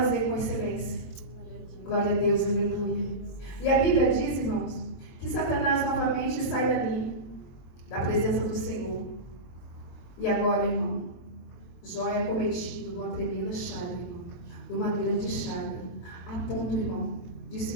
com excelência. Glória a Deus, aleluia. E a Bíblia diz, irmãos, que Satanás novamente sai dali, da presença do Senhor. E agora, irmão, Jó é cometido de uma tremenda chaga, irmão, de uma grande chaga, a ponto, irmão, de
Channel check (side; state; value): right; late; 22 ms